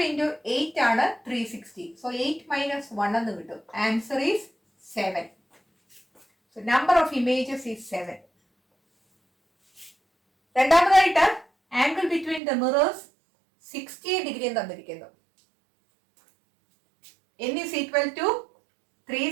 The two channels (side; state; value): left; drops out; at 12.4 s